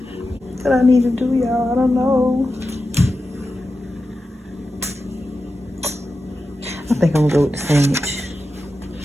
What I need to do, y'all, I don't know. I think I'm gonna go with the sandwich.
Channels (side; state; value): both; normal; correlation 0.91